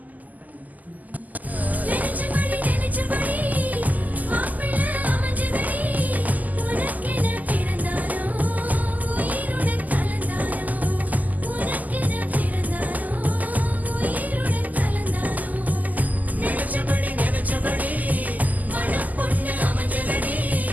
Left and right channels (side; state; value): left; late; 0.080 ms